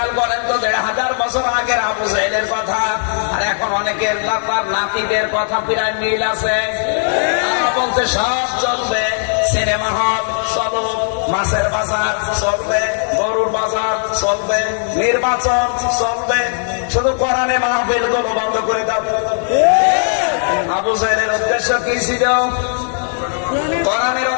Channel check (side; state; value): right; silent; digital silence